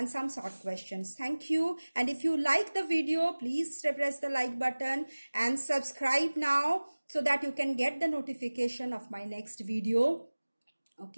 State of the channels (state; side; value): inverted; both; correlation -1.00